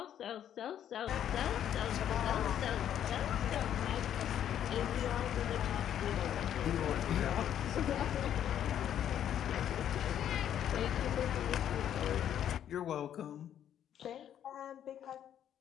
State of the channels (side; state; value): right; quieter; 10.2 dB